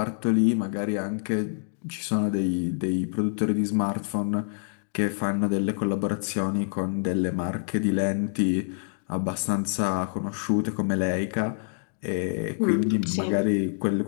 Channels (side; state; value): right; silent; digital silence